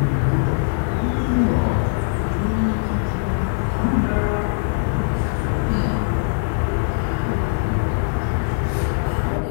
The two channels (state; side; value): silent; right; digital silence